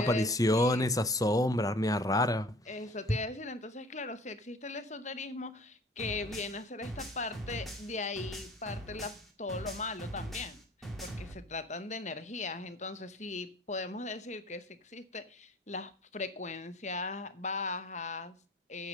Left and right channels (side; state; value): both; normal; correlation 0.49